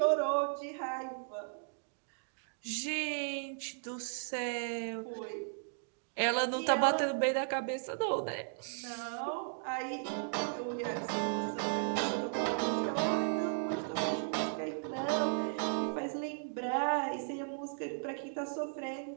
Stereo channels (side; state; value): left; silent; digital silence